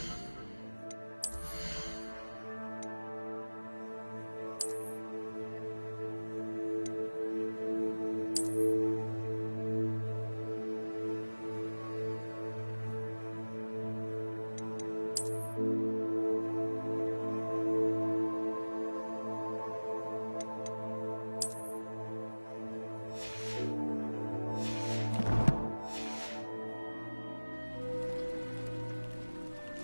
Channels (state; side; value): inverted; both; correlation -1.00